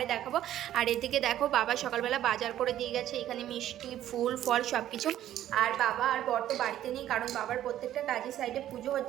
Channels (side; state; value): left; quieter; 12.3 dB